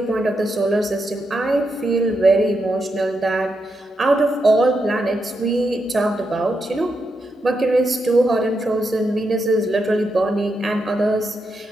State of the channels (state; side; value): normal; both; correlation 0.84